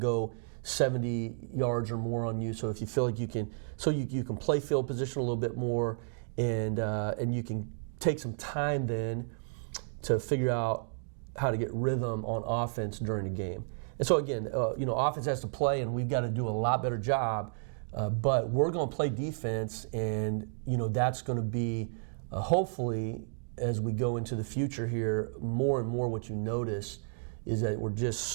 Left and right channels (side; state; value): left; silent; digital silence